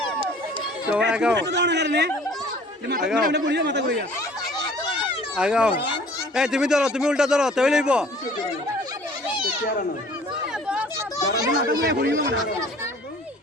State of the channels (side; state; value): both; normal; correlation 0.51